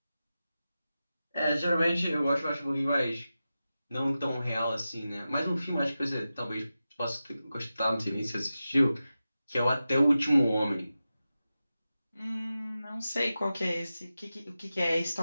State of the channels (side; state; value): both; inverted; correlation -0.93